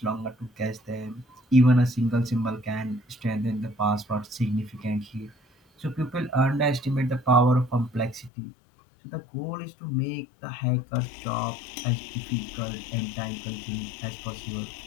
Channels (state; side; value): drops out; right; at 8.3 s